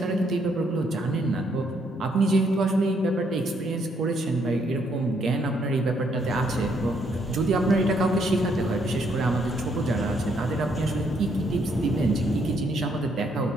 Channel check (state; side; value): normal; both; correlation 0.72